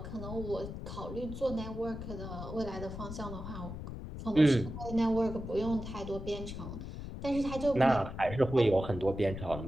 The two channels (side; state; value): left; noise; rumble, 8 dB below the sound